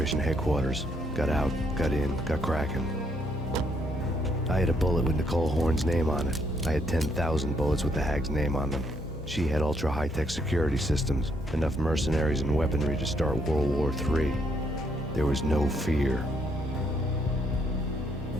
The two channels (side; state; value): both; normal; correlation 0.72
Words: headquarters. Got out, got in, got cracking. I had a bullet with Nicole Horn's name on it. I had 10,000 bullets with the Hag's name on them. She had ultra-high-tech security systems, enough mercenaries and weaponry to start World War III. There was no fear.